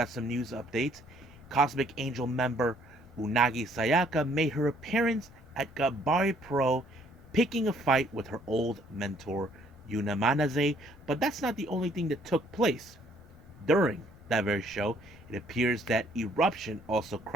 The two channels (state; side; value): noise; left; rumble, 22 dB below the sound